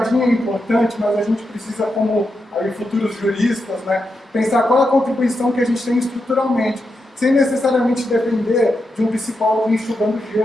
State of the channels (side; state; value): both; normal; correlation 0.86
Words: é importante, mas a gente precisa, como aí, futuros juristas, né, pensar qual é a contribuição que a gente tem estruturalmente, sem necessariamente depender de um psicólogo enxugando